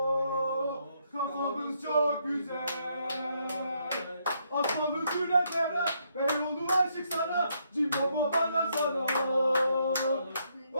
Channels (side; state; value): both; inverted; correlation -0.74